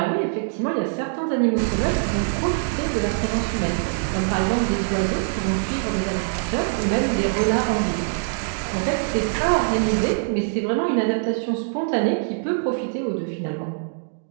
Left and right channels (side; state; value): left; silent; digital silence